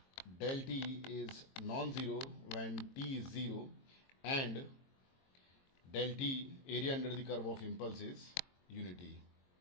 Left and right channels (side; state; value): right; late; 22 ms